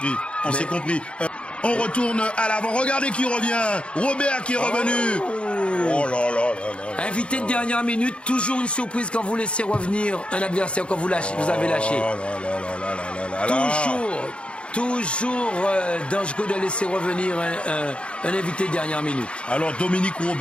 On s'est compris. On retourne à l'avant. Regardez qui revient. Robert qui est revenu. Oh là là. Invité de dernière minute, toujours une surprise quand vous laissez revenir un adversaire quand vous avez lâché. Toujours dangereux de laisser revenir un invité de dernière minute. Alors Dominique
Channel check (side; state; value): right; late; 0.058 ms